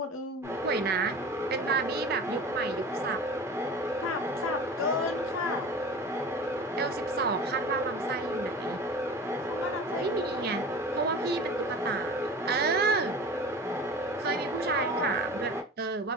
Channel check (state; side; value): normal; both; correlation 0.36